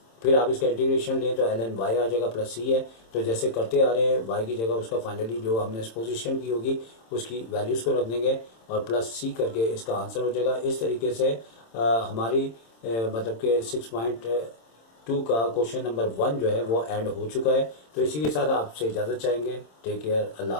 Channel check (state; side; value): late; right; 26 ms